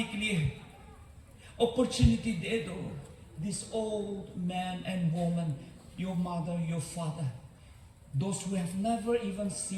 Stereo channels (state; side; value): identical; both; correlation 1.00